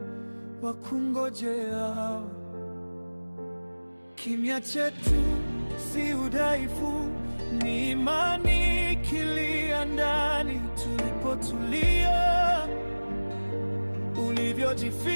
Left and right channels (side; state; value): both; inverted; correlation -1.00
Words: wakungojeao. Kimya chetu si udhaifu, ni imani ikilia ndani. Tulipotulia,